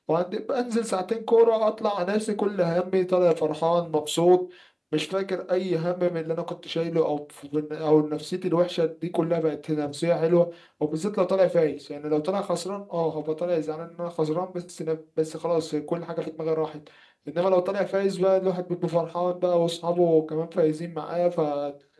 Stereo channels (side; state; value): both; identical; correlation 1.00